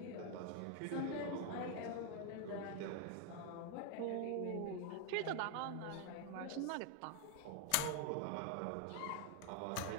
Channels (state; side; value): different; both; correlation 0.00